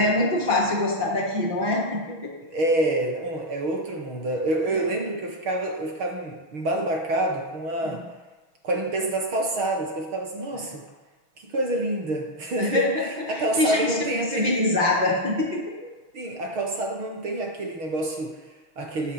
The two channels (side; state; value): left; late; 6.2 ms